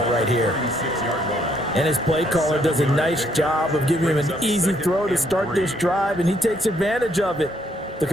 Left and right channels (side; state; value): both; normal; correlation 0.70